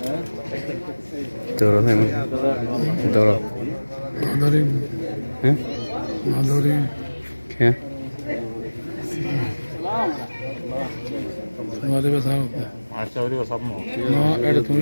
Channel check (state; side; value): inverted; both; correlation -1.00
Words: دورة دورة معذورين ها معذورين كيف हमारे पास आओ आचार्य का सब में ना एड तुम